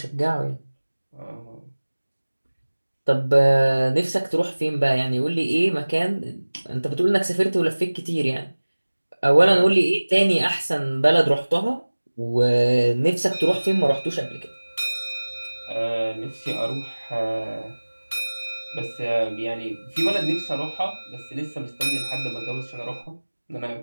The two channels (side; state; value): both; inverted; correlation -1.00